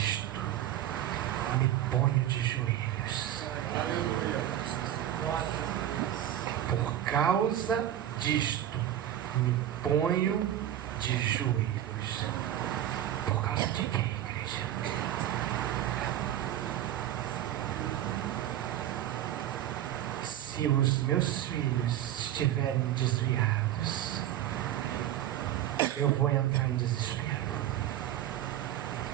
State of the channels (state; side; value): quieter; left; 12.1 dB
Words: me ponho de joelhos. Por causa disto me ponho de joelhos. Por causa de quê, igreja? Se os meus filhos estiverem desviados, eu vou entrar em desespero.